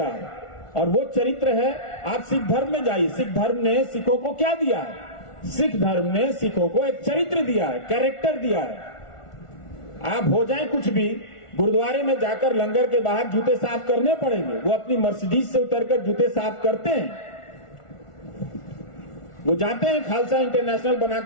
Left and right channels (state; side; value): late; right; 1.4 ms